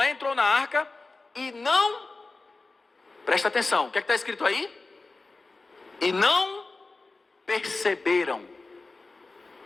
entrou na arca, e não... Presta atenção, o que é que está escrito aí? E não perceberam.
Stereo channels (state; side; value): quieter; right; 3.5 dB